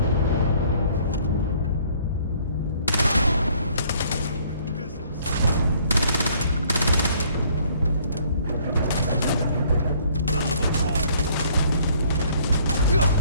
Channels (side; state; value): both; inverted; correlation -0.60